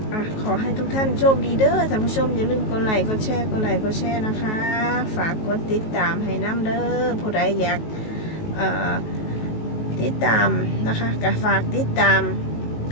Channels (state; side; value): late; right; 19 ms